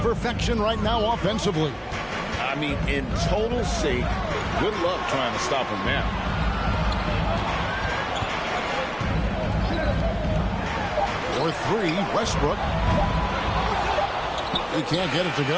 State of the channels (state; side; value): identical; both; correlation 1.00